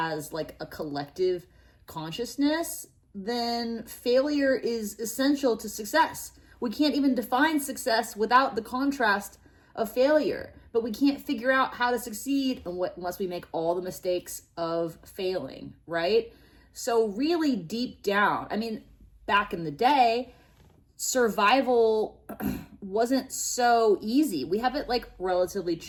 like a collective consciousness, then failure is essential to success. We can't even define success without the contrast of failure, but we can't figure out how to succeed unless we make all the mistakes of failing, right? So really deep down, back in the day, survival wasn't so easy. We have it like relatively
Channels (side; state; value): both; identical; correlation 1.00